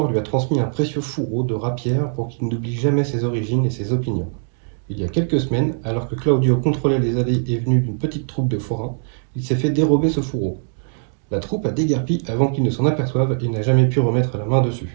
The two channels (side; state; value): left; silent; digital silence